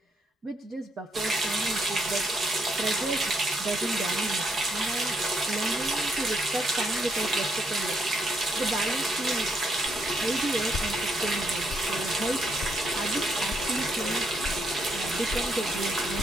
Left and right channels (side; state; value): both; normal; correlation 0.74